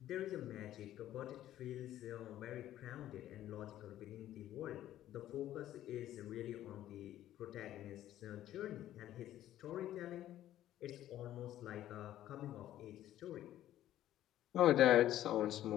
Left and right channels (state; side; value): quieter; right; 12.9 dB